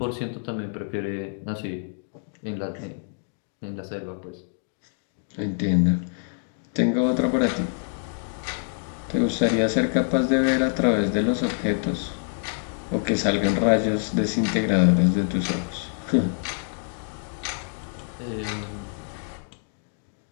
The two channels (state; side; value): silent; right; 61 dB below the other